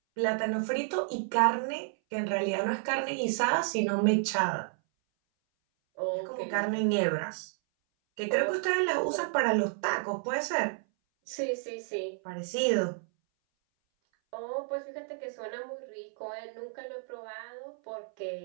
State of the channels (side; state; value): left; silent; 57 dB below the other